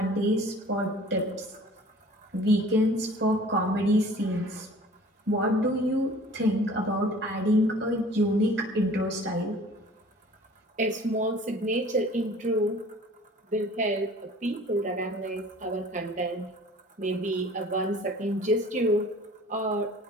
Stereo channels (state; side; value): normal; both; correlation 0.48